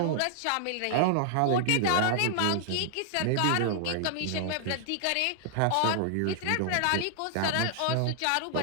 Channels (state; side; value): different; both; correlation -0.01